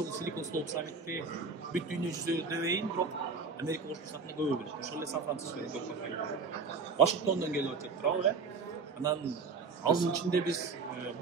Silicon Slope саммитте бүт дүйнө жүзү дебейин, бирок Америка Кошмо Штатында көбү билет. Ошол эле Сан-Францискодон көп компания. Вашингтондон келип атат турабы, Анан алдын ичинде биз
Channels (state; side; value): quieter; left; 4.8 dB